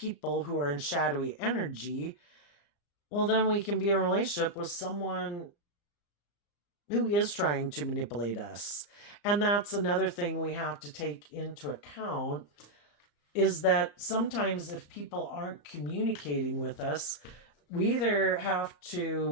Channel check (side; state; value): right; late; 34 ms